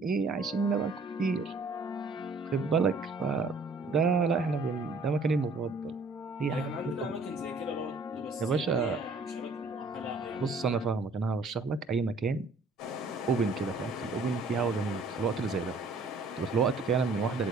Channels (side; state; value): left; quieter; 3.4 dB